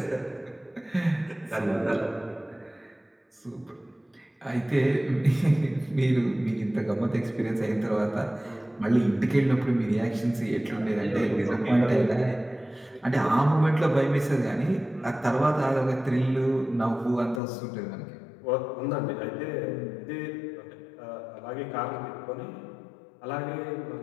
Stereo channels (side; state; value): right; drops out; at 17.4 s